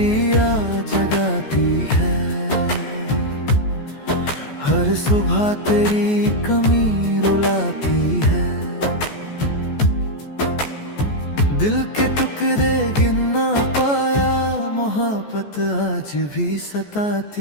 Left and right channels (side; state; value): right; late; 14 ms